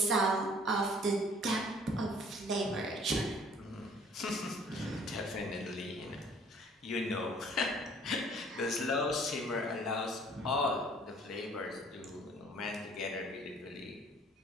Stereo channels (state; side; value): normal; both; correlation 0.55